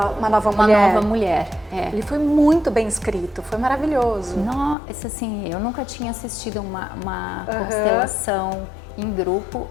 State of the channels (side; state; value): right; drops out; at 4.8 s